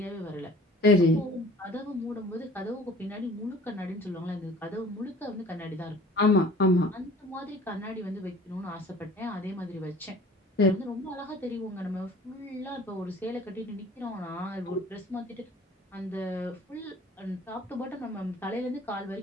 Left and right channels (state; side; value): normal; both; correlation 0.48